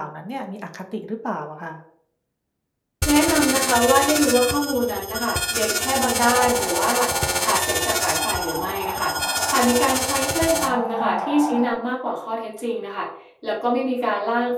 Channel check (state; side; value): identical; both; correlation 1.00